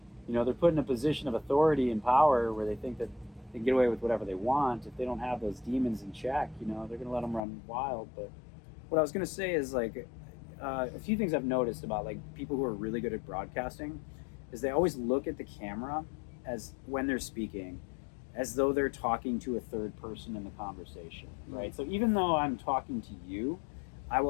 you know, they're put in a position of authority and power where they think that they can get away with whatever they want. If they don't have those demons in check, you know, they're going to let them run wild. But what I was going to say is like a few things I've noticed about like people who are really good at broadcasting is they always look at the camera as when they're speaking as though they're talking to a third person in the conversation, right? So even though I'm talking to you, I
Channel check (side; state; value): right; drops out; at 7.4 s